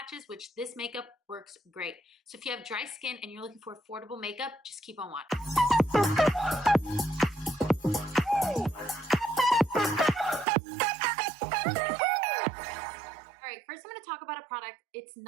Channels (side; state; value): left; drops out; at 10.5 s